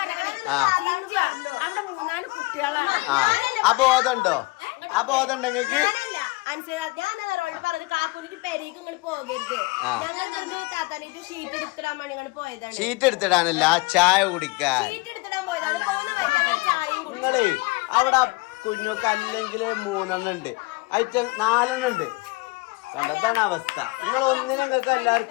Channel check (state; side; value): quieter; right; 24.9 dB